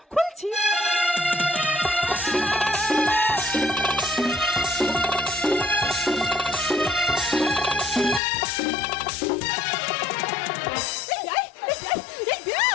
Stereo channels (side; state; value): right; drops out; at 8.2 s